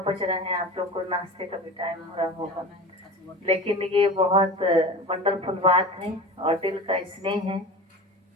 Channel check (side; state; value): both; normal; correlation 0.32